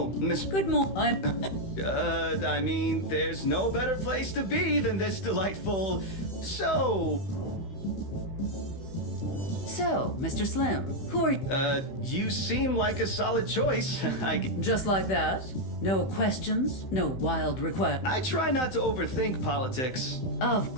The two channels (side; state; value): right; late; 16 ms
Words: Miss... Good morning. I mean, there's no better place to be than this delightful... So, Mr. Slim, who are you? You seem like a solid choice. Just like that? No questions? No wild requests? I try not to overthink politics. Of